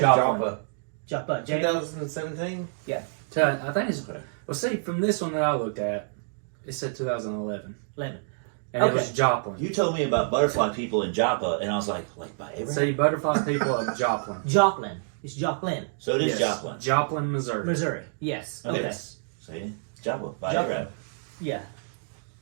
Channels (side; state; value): left; silent; digital silence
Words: Joplin. 2017? Yeah. I think it's. Okay. Well, see, from this one that I looked at, it said 2011. 11. And Okay. it was Joplin. You told me about butterfly people in Joppa, and I was like by Abraham? See, butterfly people of Joplin. Joplin. It's Joplin, So it is Yes. Joplin. Joplin, Missouri. Missouri. Yes. Okay. Yes. See? Joppa. By Joplin. Abraham. Yeah.